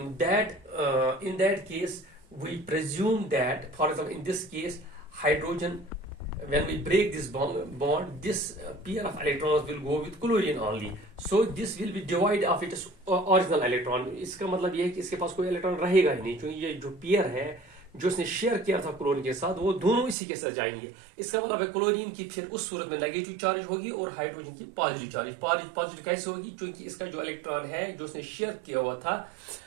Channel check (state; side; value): drops out; left; at 20.2 s